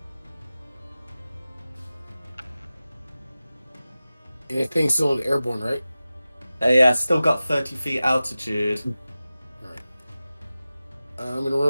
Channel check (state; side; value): inverted; both; correlation -0.96